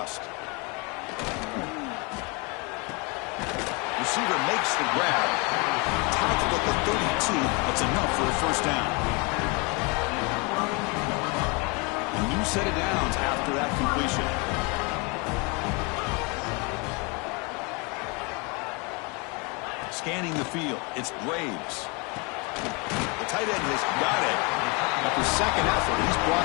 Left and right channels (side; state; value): right; quieter; 30.3 dB